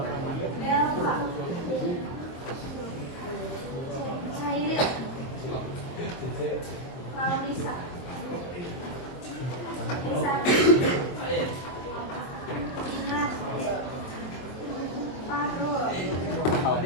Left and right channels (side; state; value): right; late; 23 ms